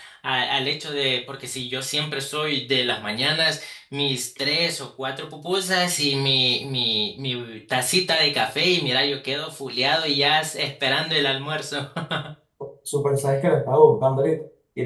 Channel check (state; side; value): identical; both; correlation 1.00